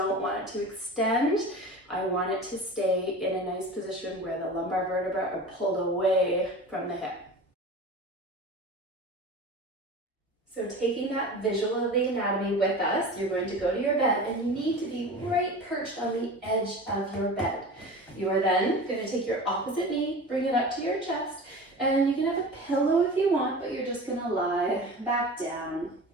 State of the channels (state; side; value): normal; both; correlation 0.34